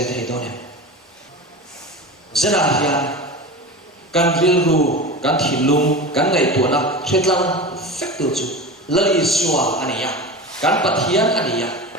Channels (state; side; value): normal; both; correlation 0.29